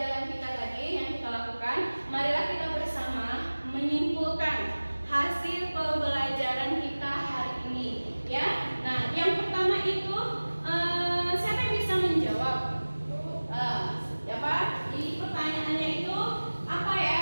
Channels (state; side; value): inverted; both; correlation -1.00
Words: kita tadi yang kita lakukan. Marilah kita bersama menyimpulkan hasil pembelajaran kita hari ini. Ya, nah yang pertama itu siapa yang bisa menjawab? Siapa? Di pertanyaannya itu apa ya